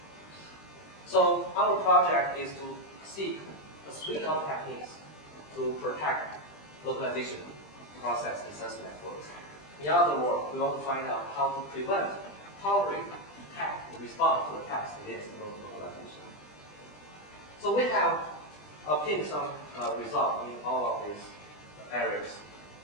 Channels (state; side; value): late; right; 20 ms